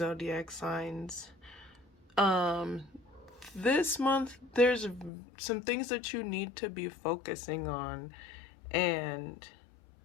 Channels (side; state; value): right; drops out; at 5.1 s